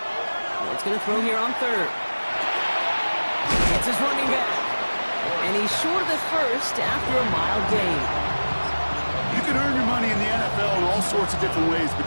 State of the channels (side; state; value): both; inverted; correlation -1.00